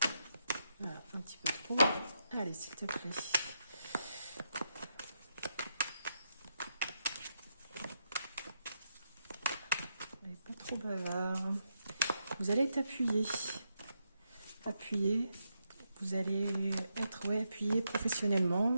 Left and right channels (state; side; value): inverted; both; correlation -0.83